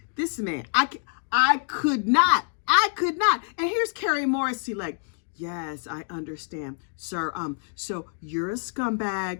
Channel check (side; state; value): right; silent; 58 dB below the other